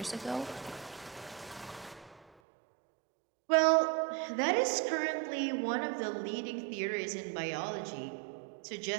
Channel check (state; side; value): drops out; left; at 2.3 s